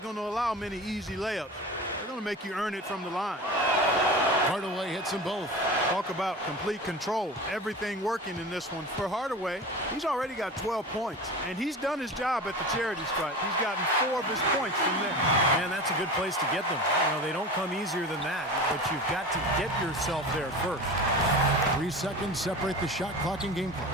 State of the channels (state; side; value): normal; both; correlation 0.32